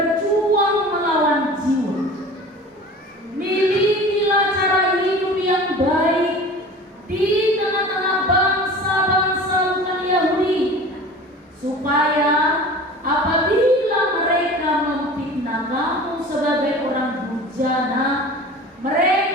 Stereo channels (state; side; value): normal; both; correlation 0.39